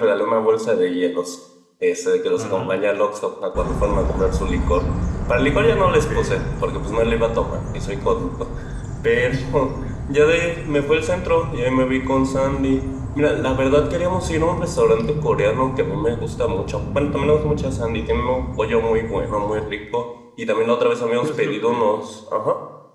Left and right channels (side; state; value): both; identical; correlation 1.00